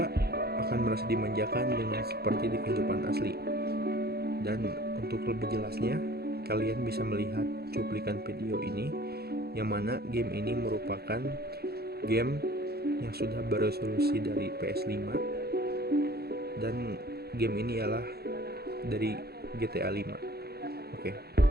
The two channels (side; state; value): left; late; 0.46 ms